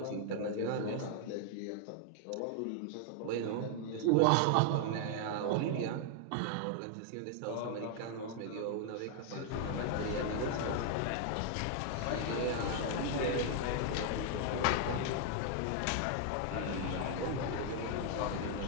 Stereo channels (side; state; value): both; different; correlation 0.00